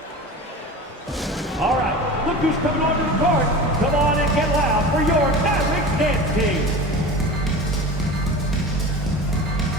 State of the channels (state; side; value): normal; both; correlation 0.33